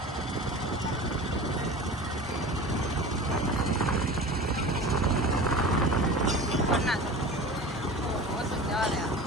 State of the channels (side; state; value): both; normal; correlation 0.35